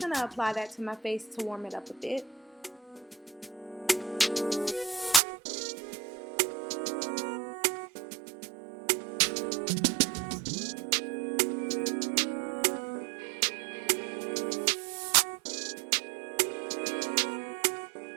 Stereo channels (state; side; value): drops out; left; at 5.2 s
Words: to apply that to my face to warm it up a bit.